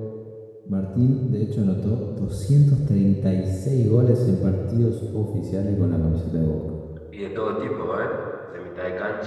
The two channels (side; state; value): both; identical; correlation 1.00